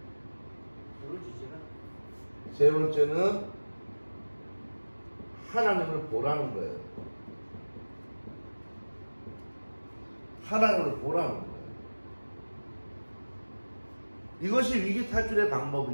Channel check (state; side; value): inverted; both; correlation -1.00